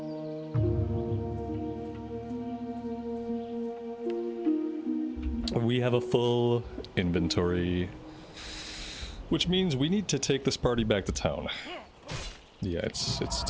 We have a full inventory, which means we need to take this party back to town. Yeah, it's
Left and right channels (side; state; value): both; identical; correlation 1.00